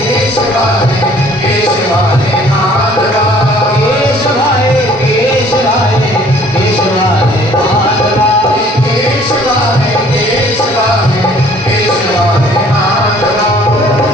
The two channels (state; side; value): normal; both; correlation 0.56